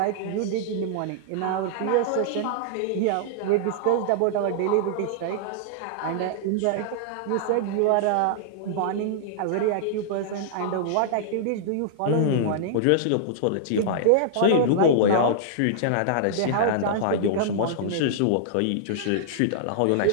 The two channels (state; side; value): different; both; correlation -0.01